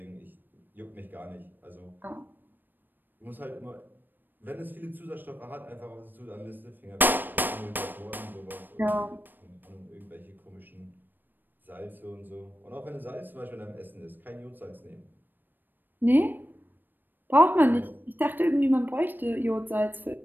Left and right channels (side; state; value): left; late; 0.092 ms